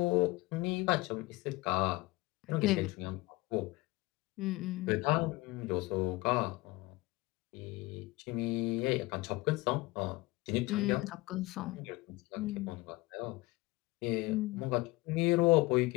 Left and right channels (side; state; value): right; quieter; 21.2 dB